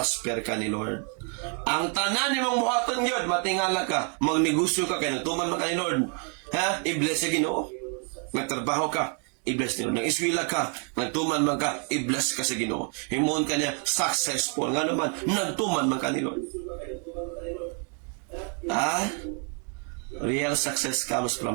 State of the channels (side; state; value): left; quieter; 39.9 dB